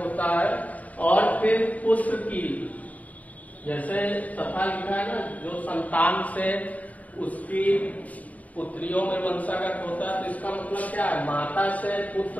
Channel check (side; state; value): right; late; 0.072 ms